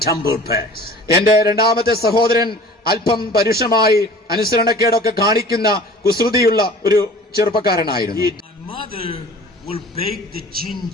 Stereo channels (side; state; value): both; normal; correlation 0.45